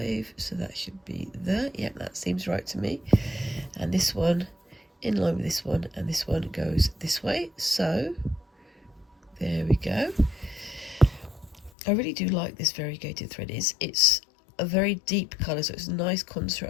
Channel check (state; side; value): drops out; right; at 11.7 s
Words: so that should be there. Yep, that seems right to me. And this one in line with this one, and this one goes this way, so there we go. I really do like this variegated thread. It's a very deep colour, so it's a nice